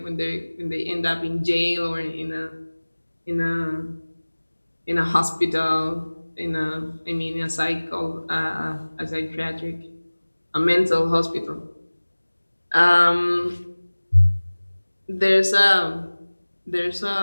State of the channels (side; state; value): both; inverted; correlation -1.00